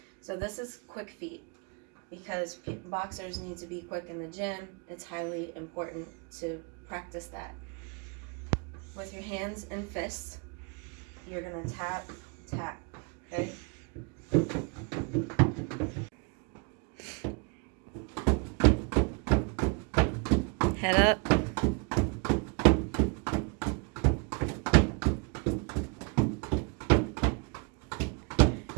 So this is quick feet. Because boxers need to be quick in the gym, it's highly important to practice that. With your hands and fists, you're gonna tap, tap, okay? Head up.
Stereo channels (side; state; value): left; quieter; 33.5 dB